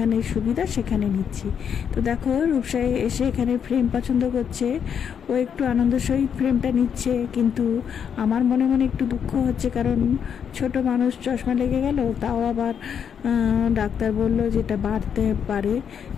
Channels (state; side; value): quieter; right; 7.7 dB